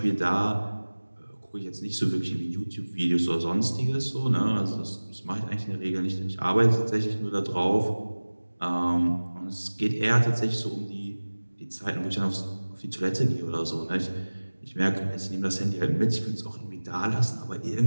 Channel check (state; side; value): inverted; both; correlation -1.00